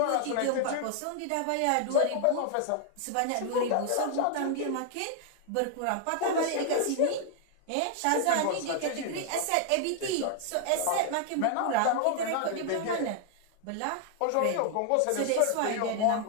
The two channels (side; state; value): both; different; correlation 0.00